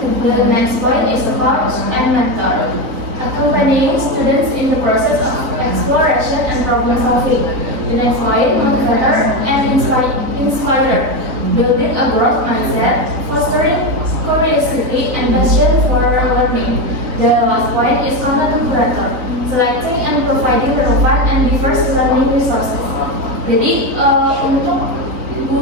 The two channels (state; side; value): late; left; 3.9 ms